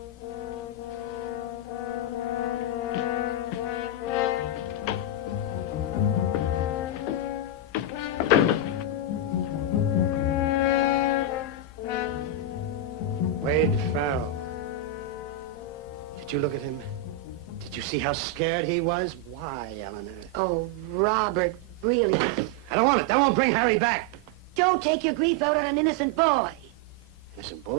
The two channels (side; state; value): both; normal; correlation 0.01